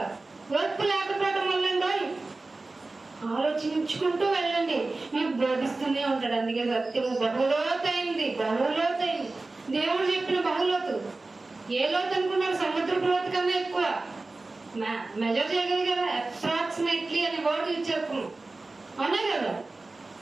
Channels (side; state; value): left; quieter; 3.3 dB